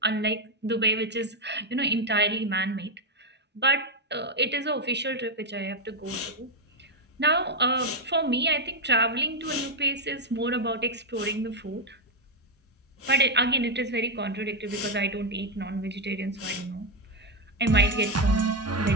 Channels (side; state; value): both; normal; correlation 0.04